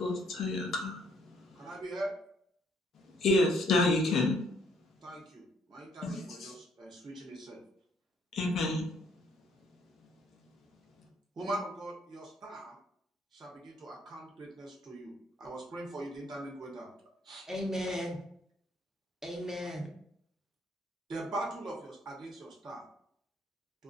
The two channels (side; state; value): both; normal; correlation 0.66